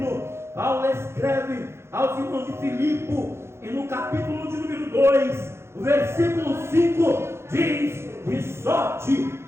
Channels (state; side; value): late; left; 0.12 ms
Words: Paulo escreve aos irmãos de Filipe, e no capítulo de número 2, o versículo 5 diz: de sorte